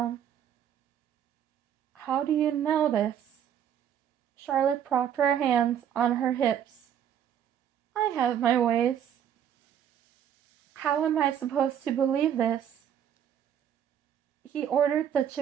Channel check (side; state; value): left; quieter; 9.4 dB